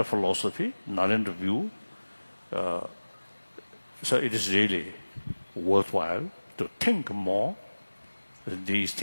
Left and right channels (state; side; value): inverted; both; correlation -1.00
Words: philosophy, Nalanda view. So it is really worthwhile to think more these